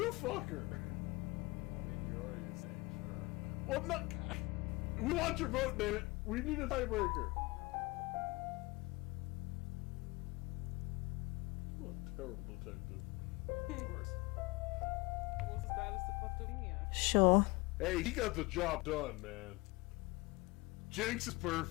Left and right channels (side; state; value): right; quieter; 23.8 dB